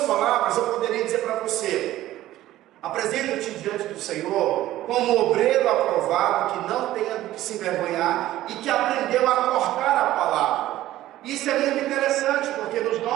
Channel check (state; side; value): quieter; left; 14.7 dB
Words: palavras, eu poderia dizer para você: apresenta-te diante do Senhor como obreiro aprovado, que não tenha do que se envergonhar e que aprendeu a cortar a palavra. Isso é muito interessante, porque nos